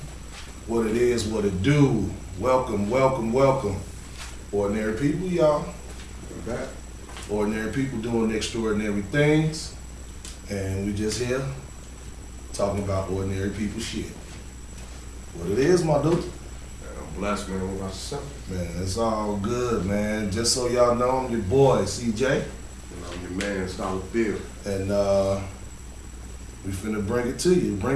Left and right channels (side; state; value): both; identical; correlation 1.00